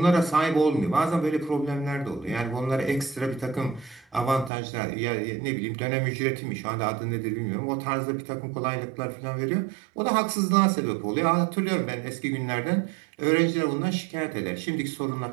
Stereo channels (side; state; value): left; drops out; at 4.5 s